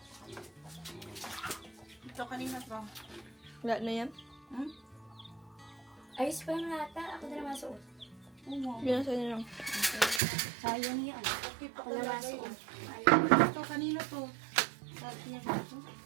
Ito kanina to. Wala na yan. Ayos pa yung lata. Ako na naman suot. Oo. Yun na sa'yo lang. Sayang yan. Okay pa Ako na naman talaga suot. yun. Ito kanina to. Sabi niya dito.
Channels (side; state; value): left; drops out; at 10.2 s